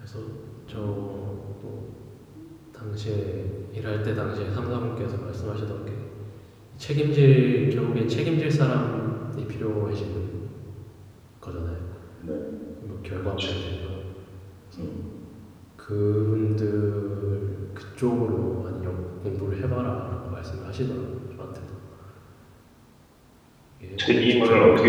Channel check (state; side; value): identical; both; correlation 1.00